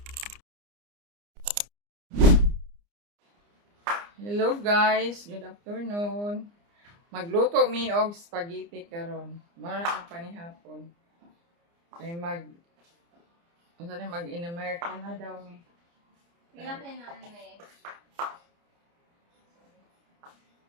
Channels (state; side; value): late; left; 29 ms